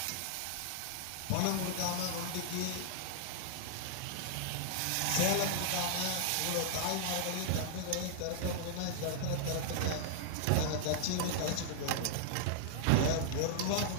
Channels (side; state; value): both; different; correlation -0.01